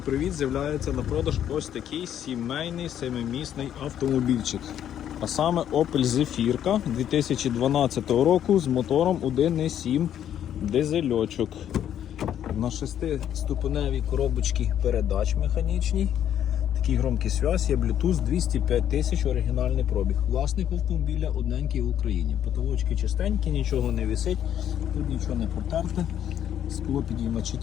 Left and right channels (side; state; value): right; quieter; 10.3 dB